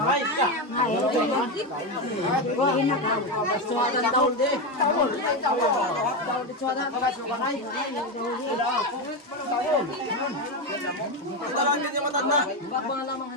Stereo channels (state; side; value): normal; both; correlation 0.12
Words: Ay, ka. Suwadan daw di. Tawol. Tawol di suwadan. Suwadan. Tawol. Ito lang din yung matanda. Bakbang lamang